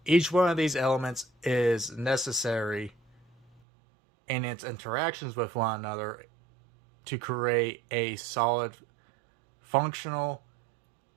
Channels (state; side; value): drops out; left; at 3.6 s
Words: Each one of these elements is necessary in its interactions with one another to create a solid, functional,